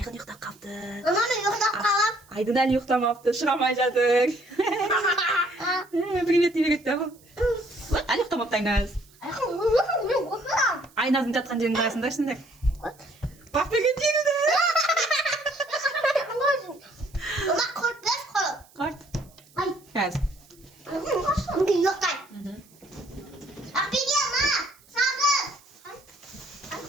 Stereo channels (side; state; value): right; noise; hiss, 28 dB below the sound